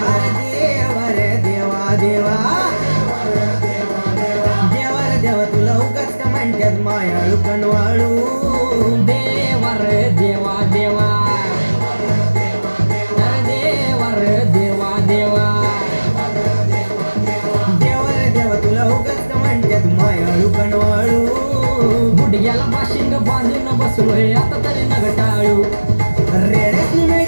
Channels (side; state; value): both; inverted; correlation -1.00